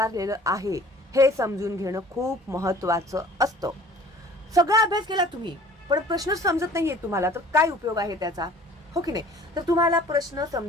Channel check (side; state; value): both; normal; correlation 0.49